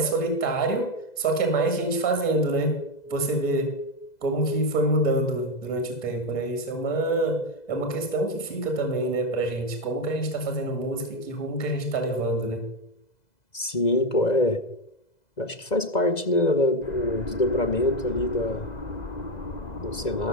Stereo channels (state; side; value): late; right; 2.0 ms